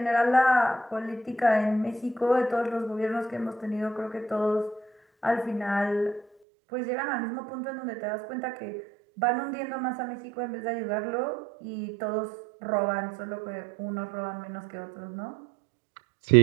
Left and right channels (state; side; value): drops out; left; at 6.2 s